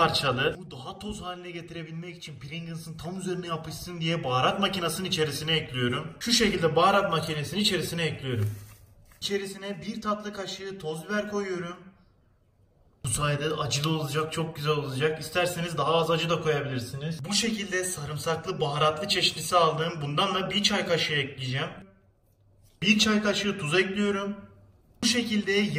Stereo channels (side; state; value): both; identical; correlation 1.00